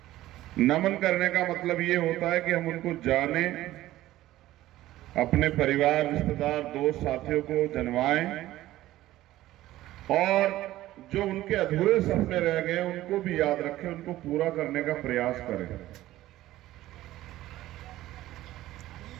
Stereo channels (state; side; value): quieter; left; 15.3 dB